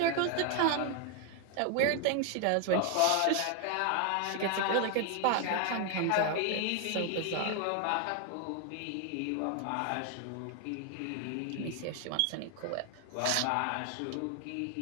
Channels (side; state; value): both; different; correlation 0.00